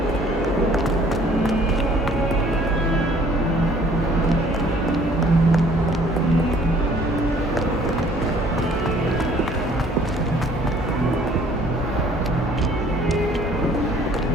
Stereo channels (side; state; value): both; normal; correlation 0.57